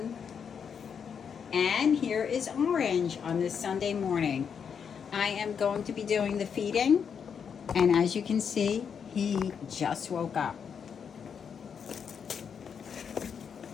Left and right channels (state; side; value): quieter; right; 7.0 dB